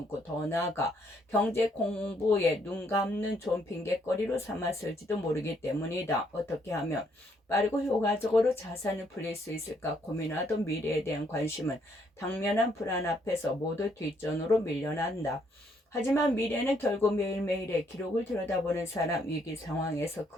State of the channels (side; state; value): both; normal; correlation 0.70